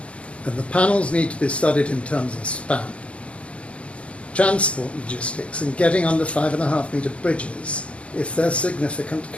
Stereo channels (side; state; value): right; late; 0.061 ms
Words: then the panels need to be studied in terms of span, transport logistics, and getting under 5.5 metre bridges if there's significant